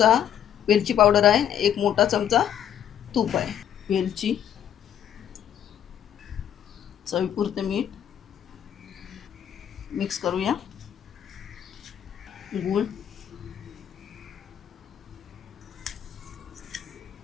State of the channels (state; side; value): quieter; right; 9.9 dB